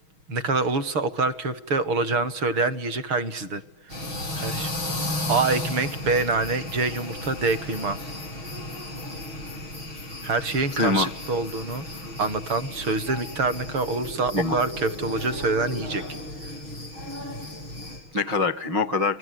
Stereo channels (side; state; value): left; late; 6.3 ms